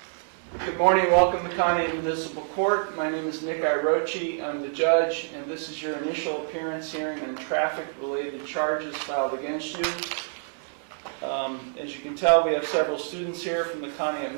Good morning, welcome to Conneaut Municipal Court. My name is Nick Irochi. I'm the judge, and this is your initial appearance hearing on traffic-related charges filed against you. As you can tell, we have several students here from the Conneaut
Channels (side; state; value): left; silent; digital silence